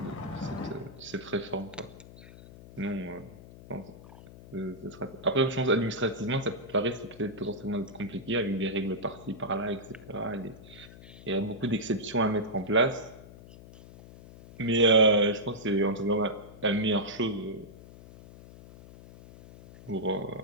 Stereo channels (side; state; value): left; noise; hum, 18 dB below the sound